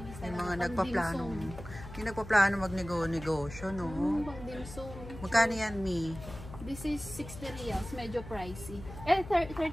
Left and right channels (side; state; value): left; noise; hum, 13 dB below the sound